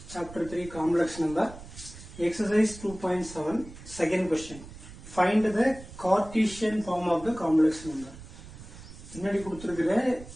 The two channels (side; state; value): right; noise; rumble, 16 dB below the sound